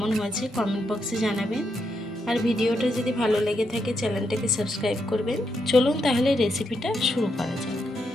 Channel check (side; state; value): both; normal; correlation 0.81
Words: হয়েছে কমেন্ট বক্সে জানাবেন। আর ভিডিওটা যদি ভালো লেগে থাকে চ্যানেলটাকে সাবস্ক্রাইব করবেন। চলুন তাহলে রেসিপিটা শুরু করা যাক।